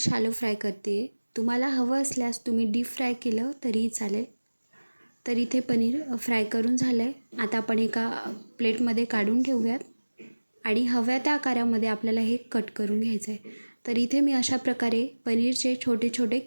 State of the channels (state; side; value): inverted; both; correlation -1.00